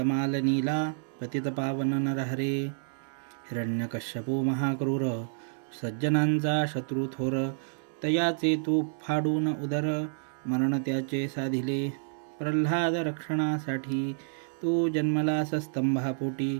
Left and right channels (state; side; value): silent; left; digital silence